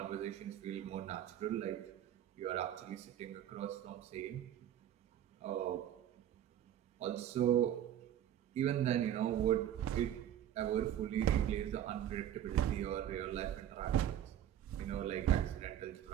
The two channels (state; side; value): quieter; left; 10.9 dB